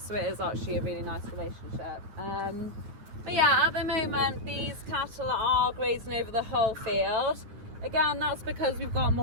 so it is actually a really nice relationship. But yeah, at the moment these cattle are grazing over the whole field. Again, that's because we've got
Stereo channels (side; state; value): left; late; 9.4 ms